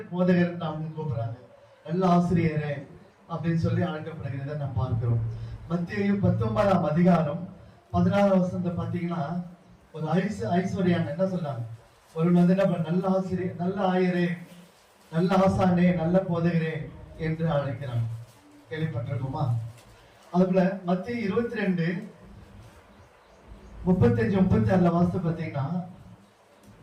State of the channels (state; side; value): identical; both; correlation 1.00